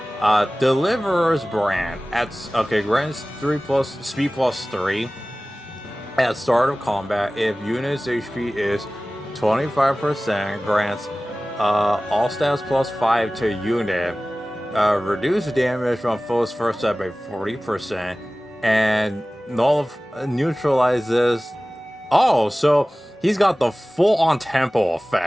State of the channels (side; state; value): both; normal; correlation 0.97